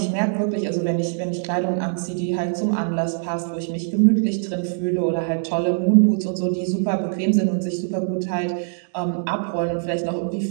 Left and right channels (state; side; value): silent; left; digital silence